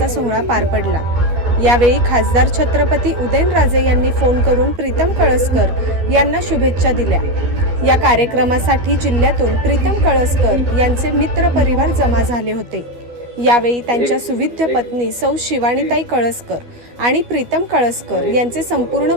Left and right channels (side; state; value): left; late; 12 ms